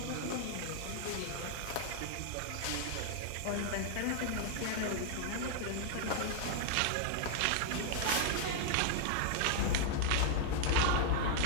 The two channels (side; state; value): both; different; correlation 0.00